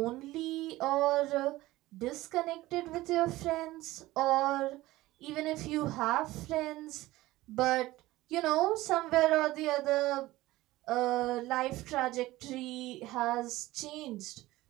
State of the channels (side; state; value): left; quieter; 17.7 dB